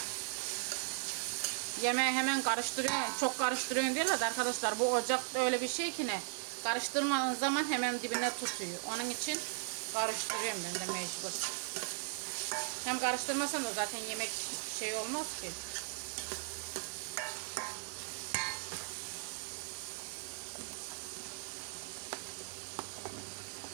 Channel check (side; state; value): left; silent; digital silence